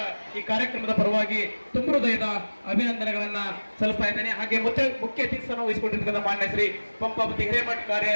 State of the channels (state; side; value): inverted; both; correlation -1.00